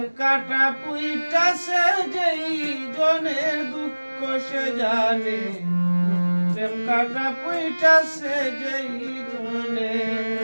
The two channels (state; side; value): inverted; both; correlation -1.00